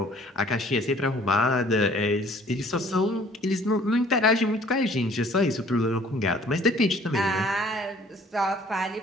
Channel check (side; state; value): both; normal; correlation 0.55